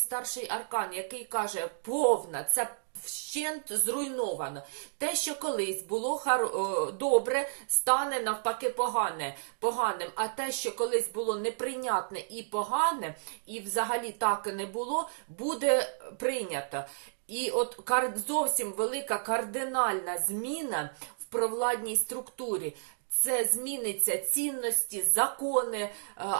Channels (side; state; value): left; silent; digital silence